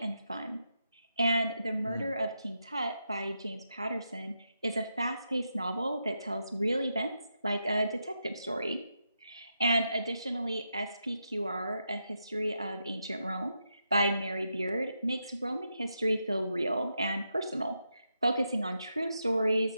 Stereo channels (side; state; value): both; inverted; correlation -0.85